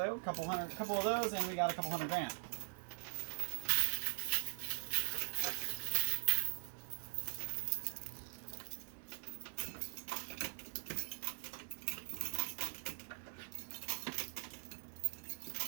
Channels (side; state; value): left; silent; digital silence